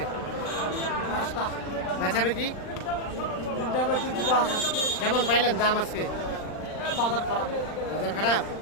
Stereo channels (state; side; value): late; right; 39 ms